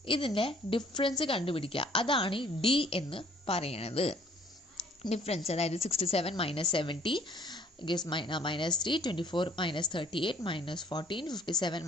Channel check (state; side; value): normal; both; correlation 0.58